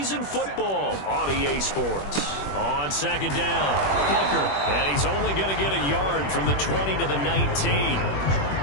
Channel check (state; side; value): late; right; 21 ms